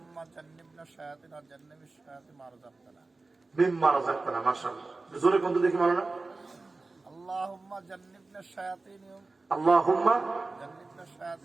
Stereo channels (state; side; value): quieter; left; 3.5 dB